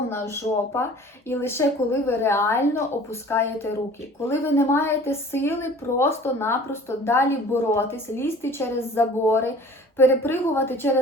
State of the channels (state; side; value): normal; both; correlation 0.46